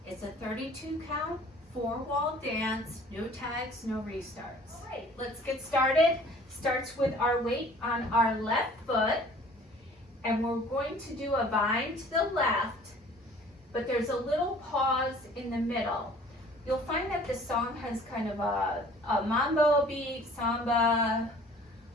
It's a 32 count, 4-wall dance, no tags, no restarts. All right, let's get started. Starts with our weight on our left foot, and we're going to do a vine to the left, but there's a little pause in the middle. You'll find that the song has kind of a Mambo beat, Samba.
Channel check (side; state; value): both; normal; correlation 0.51